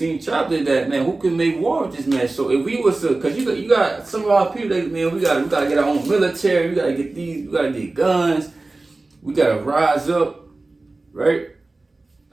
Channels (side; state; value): left; quieter; 3.2 dB